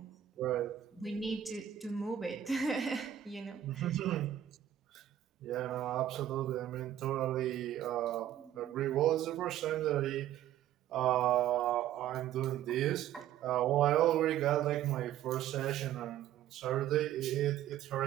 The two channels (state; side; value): quieter; left; 11.4 dB